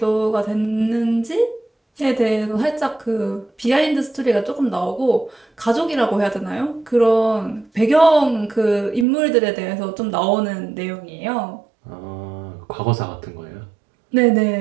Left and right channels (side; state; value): left; drops out; at 9.1 s